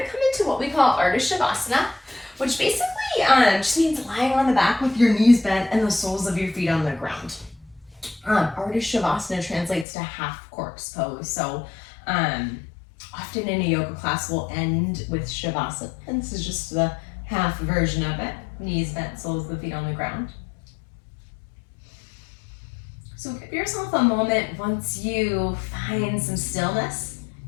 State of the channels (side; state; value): right; drops out; at 9.9 s